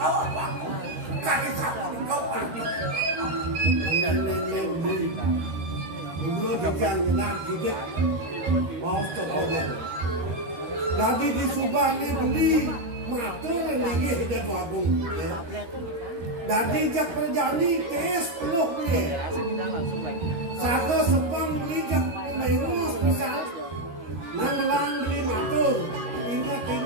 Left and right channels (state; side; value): late; left; 13 ms